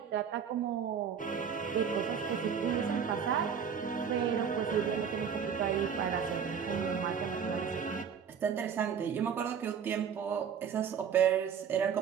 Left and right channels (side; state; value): left; quieter; 7.3 dB